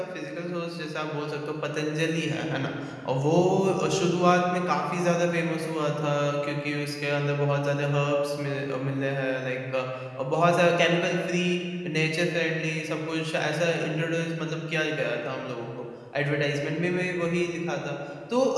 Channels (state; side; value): identical; both; correlation 1.00